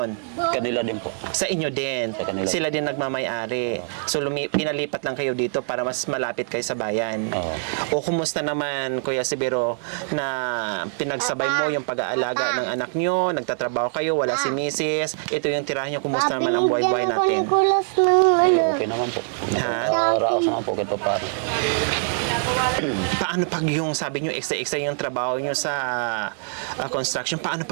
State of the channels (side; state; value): left; silent; 63 dB below the other